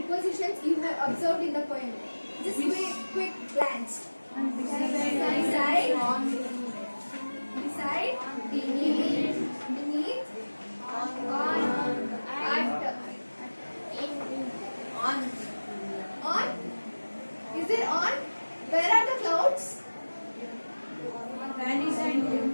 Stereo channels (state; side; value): inverted; both; correlation -1.00